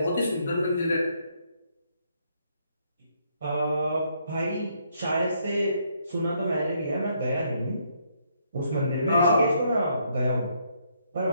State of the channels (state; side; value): inverted; both; correlation -0.72